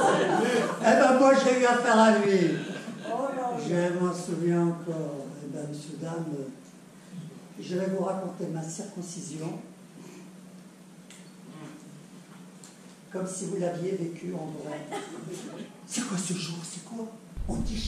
Eh ben, moi, j'ai eu affaire à lui. Je m'en souviens encore. Eh ben, monsieur, dame, je vais vous raconter ma circoncision comme si vous l'aviez vécu en vrai. C'est quoi ce jour? C'est quoi? On dit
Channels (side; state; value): both; identical; correlation 1.00